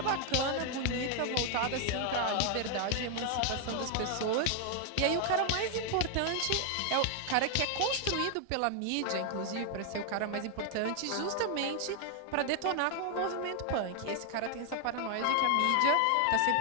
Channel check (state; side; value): different; both; correlation 0.00